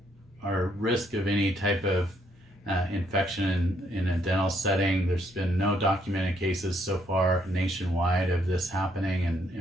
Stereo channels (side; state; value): both; normal; correlation 0.71